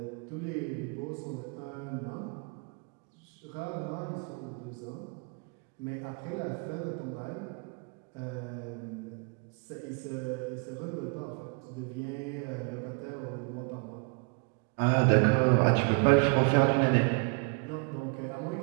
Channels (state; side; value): quieter; left; 36.1 dB